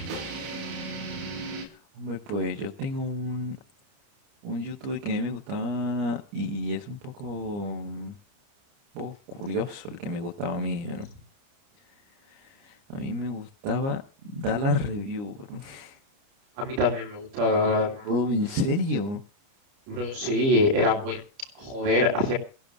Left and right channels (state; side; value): late; left; 30 ms